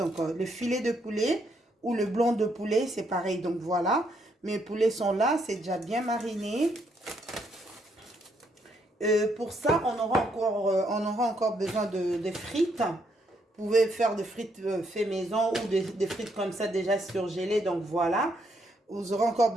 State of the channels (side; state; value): both; normal; correlation 0.74